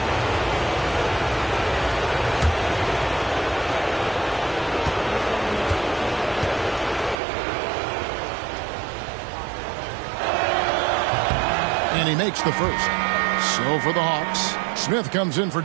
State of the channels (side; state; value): left; drops out; at 7.2 s